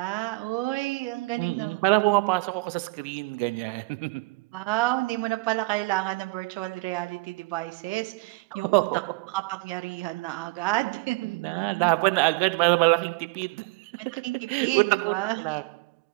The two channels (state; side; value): quieter; left; 24.3 dB